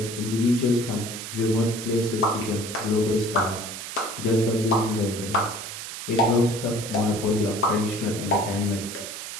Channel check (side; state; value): right; noise; hiss, 8 dB below the sound